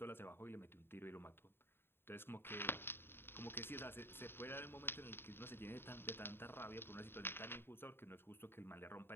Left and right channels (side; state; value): right; late; 0.11 ms